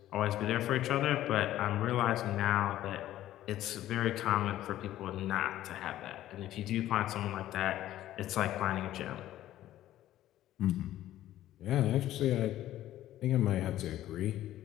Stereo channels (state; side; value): quieter; right; 13.5 dB